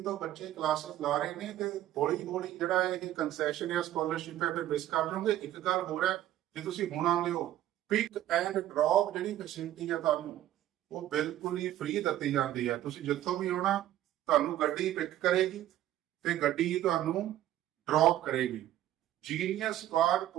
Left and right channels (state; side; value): quieter; left; 13.1 dB